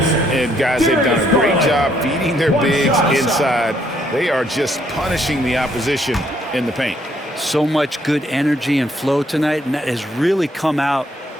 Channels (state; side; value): normal; both; correlation 0.69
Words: guys, they've done a great job feeding their bigs inside. They are just punishing the opposition in the paint. So much good energy and flow tonight, and that has really come out